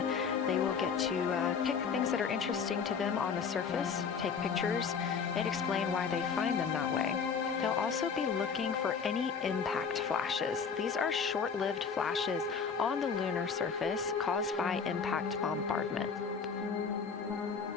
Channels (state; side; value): quieter; right; 6.0 dB